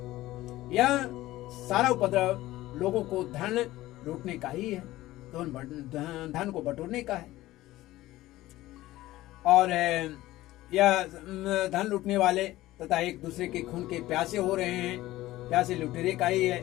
यह सारा उपद्रव लोगों को धन लूटने का ही है, धन को बटोरने का है, और यह धन लूटने वाले तथा एक दूसरे के खून के प्यासे हो रहे हैं, प्यासे लुटेरे का ही है।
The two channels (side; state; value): right; quieter; 16.6 dB